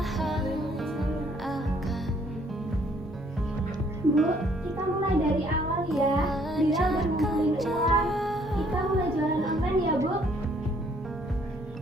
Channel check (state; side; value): normal; both; correlation 0.63